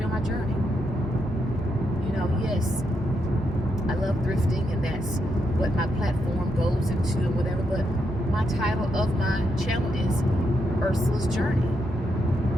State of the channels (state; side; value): normal; both; correlation 0.81